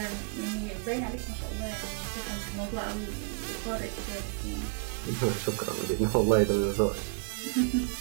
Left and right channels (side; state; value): left; quieter; 39.8 dB